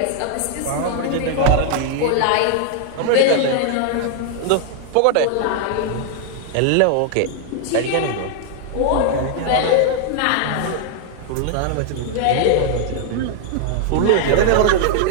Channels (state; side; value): different; both; correlation 0.00